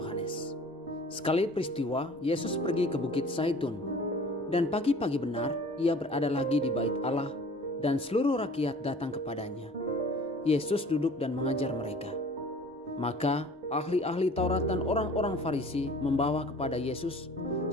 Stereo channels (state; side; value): normal; both; correlation 0.46